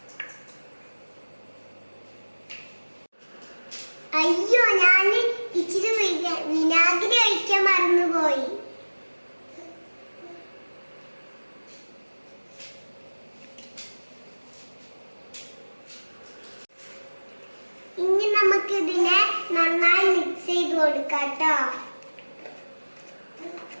അയ്യോ, ഞാൻ ഇച്ചിരി വിനാഗിരി ഒഴിക്കാൻ മറന്നുപോയി. ഇനി നമുക്ക് ഇതിനെ നന്നായി മിക്സ് ചെയ്ത് കൊടുക്കാം ട്ടോ.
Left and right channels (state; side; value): inverted; both; correlation -1.00